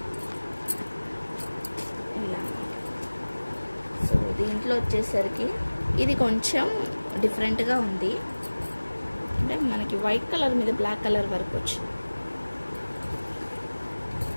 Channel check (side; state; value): both; inverted; correlation -1.00